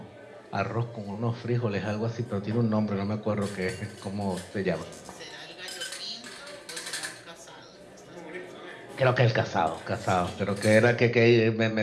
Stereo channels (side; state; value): both; identical; correlation 1.00